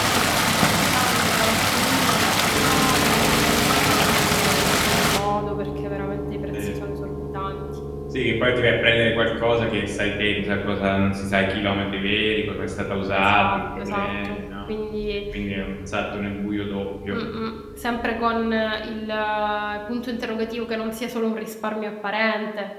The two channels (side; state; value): both; identical; correlation 1.00